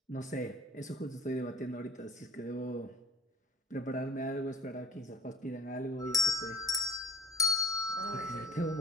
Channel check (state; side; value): normal; both; correlation 0.48